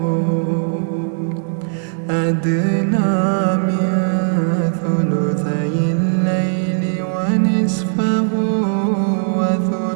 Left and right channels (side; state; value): left; silent; digital silence